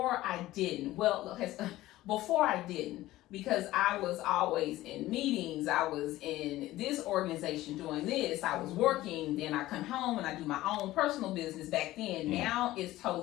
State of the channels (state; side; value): quieter; right; 16.3 dB